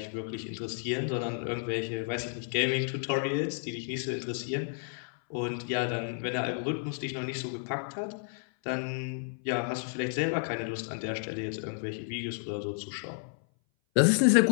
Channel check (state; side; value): silent; right; 57 dB below the other